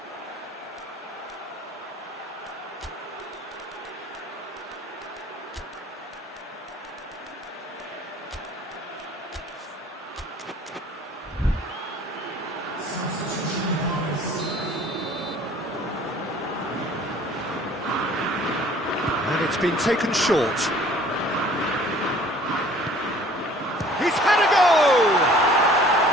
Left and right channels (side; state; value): both; normal; correlation 0.52